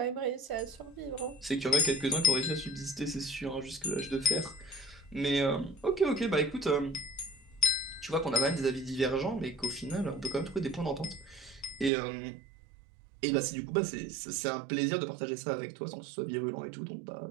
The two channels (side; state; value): left; drops out; at 11.9 s